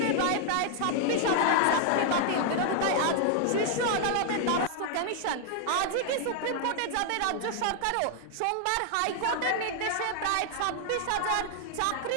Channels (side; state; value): both; different; correlation 0.00